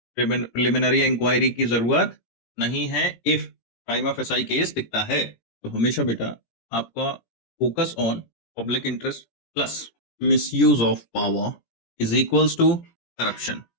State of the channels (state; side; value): late; right; 17 ms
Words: प्रिलिमिनरी इंक्वायरी की जरूरत नहीं है if time of SI case दिखता है। तो हमेशा बेटा आपका focus on public interest plus misuse of power is equals to corruption.